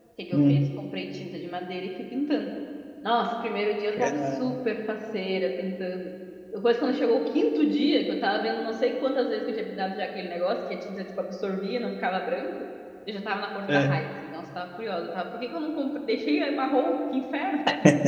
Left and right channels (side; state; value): both; identical; correlation 1.00